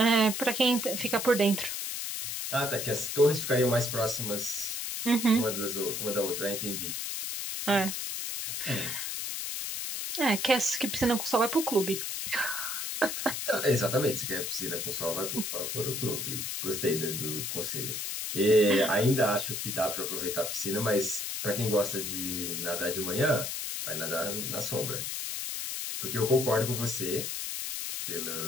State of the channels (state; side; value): noise; left; hiss, 3 dB below the sound